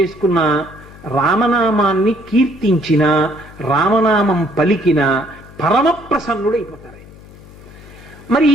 రామనామాన్ని కీర్తించిన, రామనామం పలికిన పరమ ప్రసన్నుడైపోతారు. మరి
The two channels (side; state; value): left; noise; hum, 20 dB below the sound